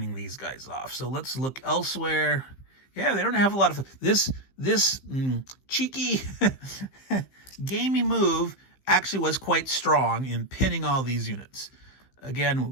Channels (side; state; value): right; late; 15 ms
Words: these guys off. So let's look elsewhere. Yeah, they don't have a lot of this cheeky gamey move actually was quite strong in pinning all these units.